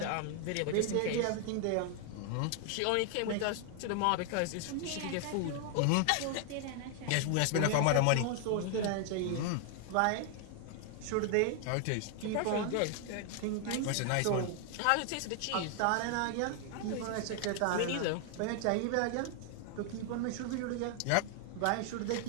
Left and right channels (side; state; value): both; different; correlation 0.00